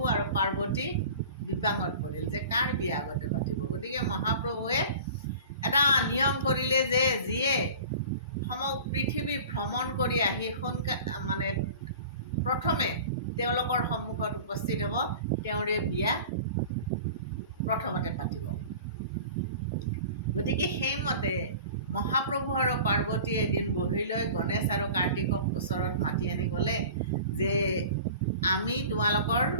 আৰু পাৰ্বতী বিপাঙত পৰিল যে কাৰ বিয়া আগতে পাতিব। গতিকে মহাপ্ৰভুৱে এটা নিয়ম কৰিলে যে যিয়ে সমগ্ৰ পৃথিৱী ভ্ৰমণ কৰি আহি মানে প্ৰথমে তেওঁলোকৰ সন্মুখত উপস্থিত হ'ব, তেওঁৰে বিয়া প্ৰথমতে পাতিব। গতিকে সেইমতে মহাপ্ৰভু আৰু পাৰ্বতীয়ে এদিন বহি লৈ গণেশ আৰু কাৰ্তিকক ওচৰত মাতি আনি ক'লে যে আমি তোমালোকৰ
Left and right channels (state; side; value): inverted; both; correlation -0.40